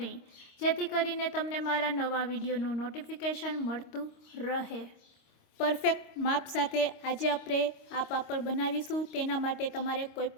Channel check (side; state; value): right; late; 26 ms